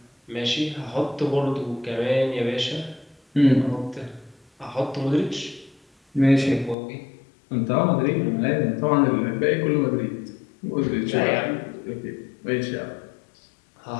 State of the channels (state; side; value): drops out; right; at 6.8 s